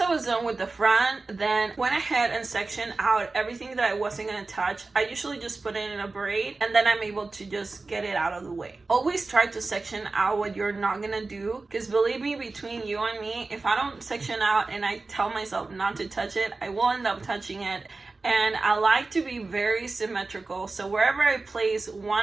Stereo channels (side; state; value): left; quieter; 3.6 dB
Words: I was done with the front, then went ahead and sectioned out everything that I wasn't gonna touch. I usually just put it in a braid and then I'm able to just get it out of the way. Always try to section out what you're not gonna do, because believe me, between you and me, if I don't section out and I tell myself not to touch it, I will end up touching it. And I like to be very symmetrical. So wherever I place